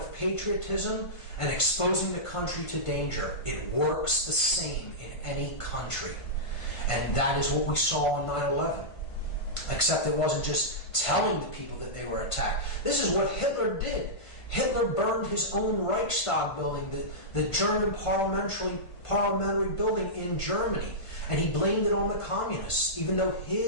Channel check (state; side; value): late; right; 1.5 ms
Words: patriotism and exposing the country to danger. It works the same in any country. And that is what we saw on 9/11. Except it wasn't just telling the people that they were attacked. This is what Hitler did. Hitler burned his own Reichstag building, the German parliamentary building in Germany, and he blamed it on the communists, even though